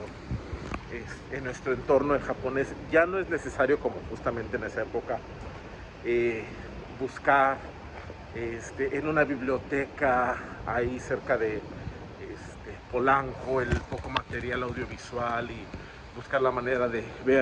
en nuestro entorno en japonés, ya no es necesario, como justamente en esa época, buscar en una biblioteca ahí cerca de Polanco el poco material audiovisual y buscar la manera de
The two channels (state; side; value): identical; both; correlation 1.00